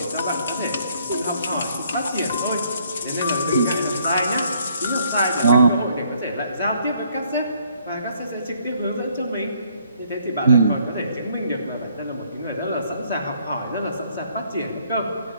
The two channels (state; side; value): inverted; both; correlation -0.66